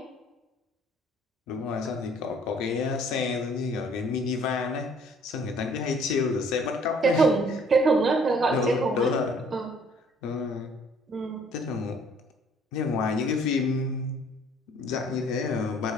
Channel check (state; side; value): normal; both; correlation 0.58